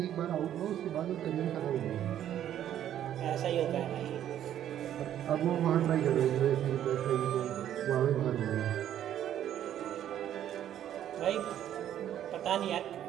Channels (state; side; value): quieter; left; 11.0 dB